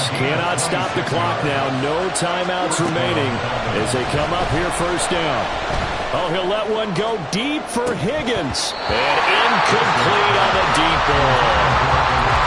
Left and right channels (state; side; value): identical; both; correlation 1.00